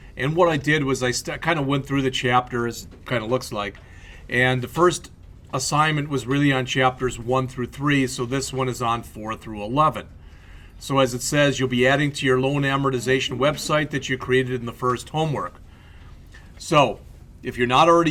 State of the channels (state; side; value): identical; both; correlation 1.00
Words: And what I did was I kind of went through the chapters, kind of looks like, and the first assignment was really on chapters 1 through 3, so this one is on 4 through 11. So as it says, you'll be adding to your loan amortization website that you created in the first homework. So if you're not already